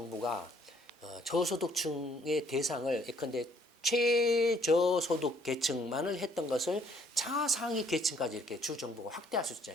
저소득층의 대상을 예컨대 최저소득 계층만을 했던 것을 차상위 계층까지 이렇게 주 정부가 확대할 수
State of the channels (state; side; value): normal; both; correlation 0.63